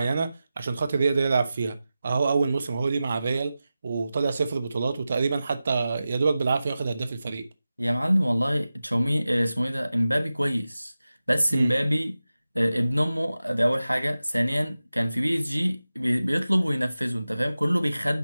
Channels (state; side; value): inverted; both; correlation -0.94